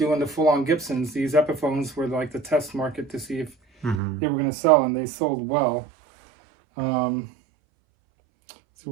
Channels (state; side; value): drops out; left; at 4.0 s